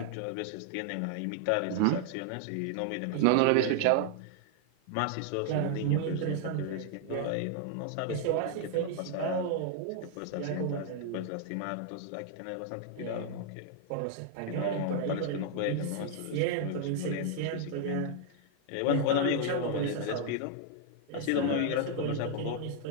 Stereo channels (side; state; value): both; different; correlation 0.00